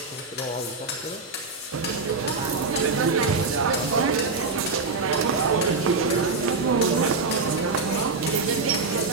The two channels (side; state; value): left; quieter; 4.0 dB